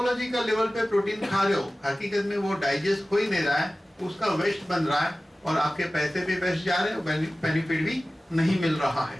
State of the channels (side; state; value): both; normal; correlation 0.96